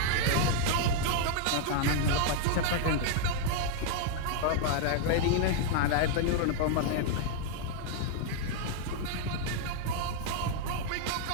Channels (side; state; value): both; different; correlation -0.01